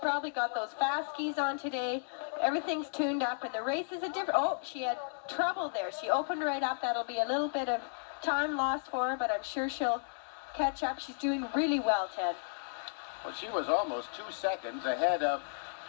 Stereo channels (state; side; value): silent; right; digital silence